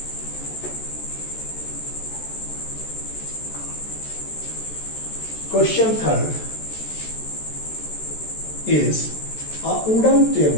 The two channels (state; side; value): late; right; 14 ms